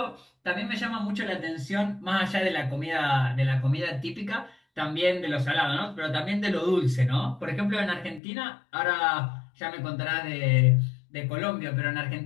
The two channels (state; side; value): drops out; right; at 8.2 s